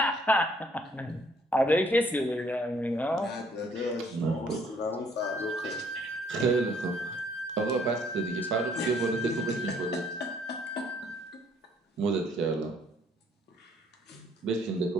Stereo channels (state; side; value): normal; both; correlation 0.63